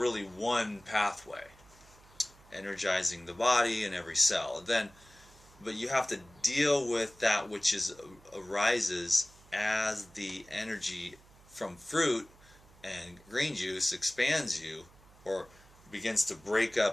one pathway, energizing the body and every cell. But you have to deal with that which arises as the energy from fruit and green juice expands you, or begins to break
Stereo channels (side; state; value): right; noise; hum, 25 dB below the sound